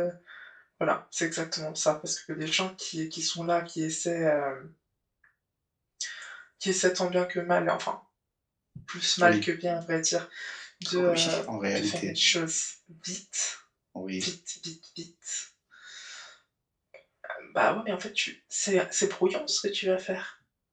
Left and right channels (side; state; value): both; identical; correlation 1.00